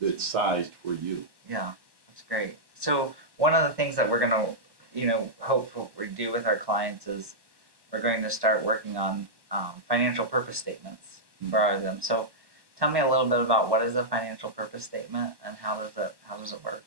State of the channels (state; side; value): late; left; 1.1 ms